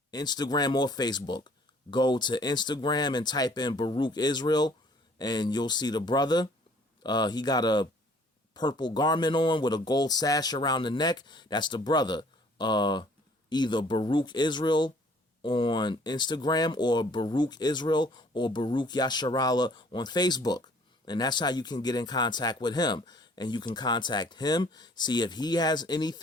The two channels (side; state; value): both; normal; correlation 0.57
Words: Instagram or Facebook. Go to Instagram and type in Baruch Israel, and you'll see the brother. He got a purple garment on with a gold sash around the neck. That's the brother. Either Baruch Israel on Instagram or Baruch Israel or Baruch Yasharala on Facebook. And that's how you can get in contact with him. And you can contact him, see if he has